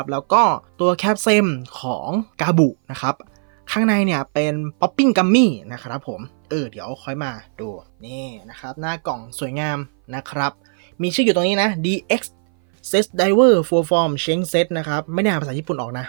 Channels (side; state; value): left; silent; 59 dB below the other